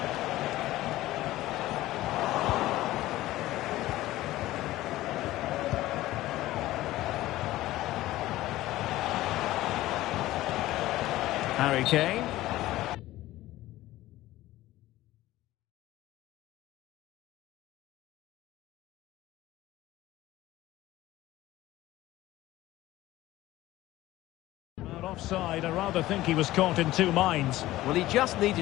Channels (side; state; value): right; quieter; 16.2 dB